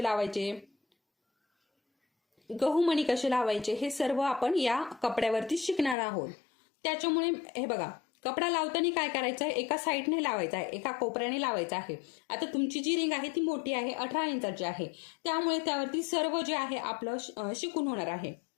लावायचे, गहू मणी कसे लावायचे, हे सर्व आपण या कपड्यावरती शिकणार आहोत. त्याच्यामुळे हे बघा, कपडा लावताना काय करायचं आहे, एका साईडने लावायचा आहे, एका कोपऱ्याने लावायचा आहे. आता तुमची जी रिंग आहे ती मोठी आहे, 18 इंचाची आहे, त्यामुळे त्यावरती सर्व जे आहे आपलं शिकून होणार आहे.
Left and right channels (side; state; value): right; drops out; at 6.0 s